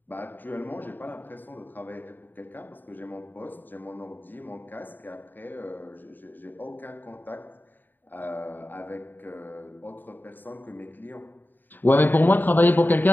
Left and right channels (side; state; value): right; late; 0.090 ms